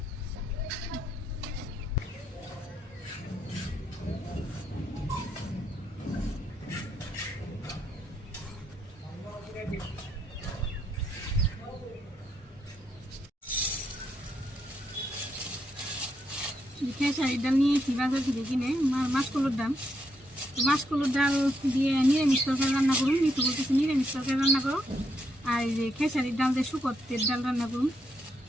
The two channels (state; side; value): normal; both; correlation 0.78